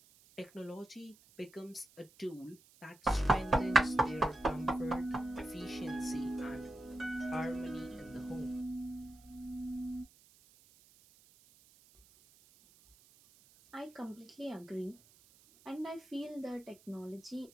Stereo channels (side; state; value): right; noise; hiss, 26 dB below the sound